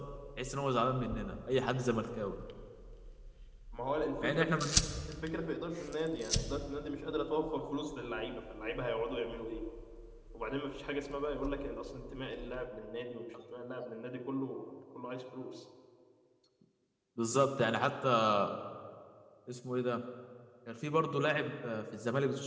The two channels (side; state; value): both; identical; correlation 1.00